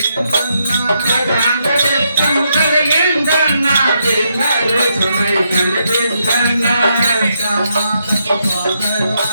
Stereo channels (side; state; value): both; inverted; correlation -0.79